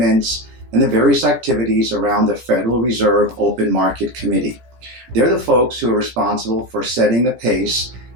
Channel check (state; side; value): late; left; 17 ms